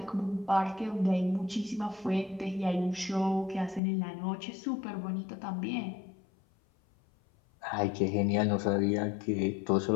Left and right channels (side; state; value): right; drops out; at 3.8 s